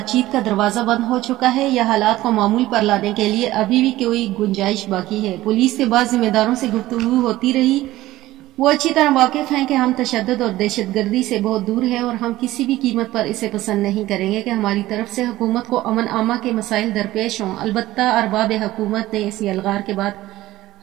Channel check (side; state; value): left; quieter; 16.2 dB